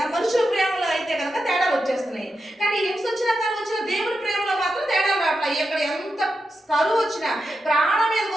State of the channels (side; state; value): both; normal; correlation 0.88